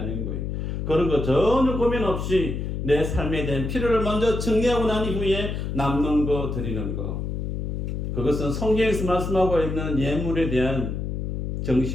거예요. 그런 거 전혀 고민 없이 내 삶에 대한 필요를 먼저 정리하고 난 이후에 남는 거 드리는 거. 그것은 성경에서 말씀하고 있는 예물에 대한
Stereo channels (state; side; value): noise; left; hum, 3 dB below the sound